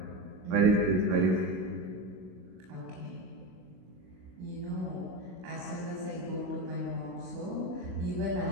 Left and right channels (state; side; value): late; left; 16 ms